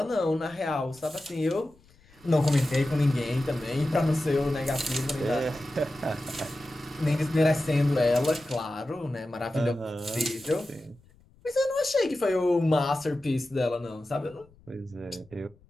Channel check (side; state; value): left; noise; rumble, 28 dB below the sound